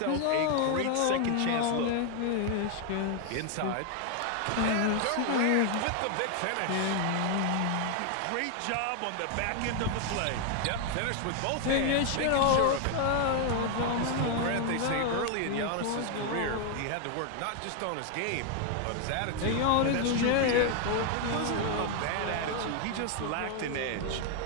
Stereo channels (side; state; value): both; different; correlation 0.01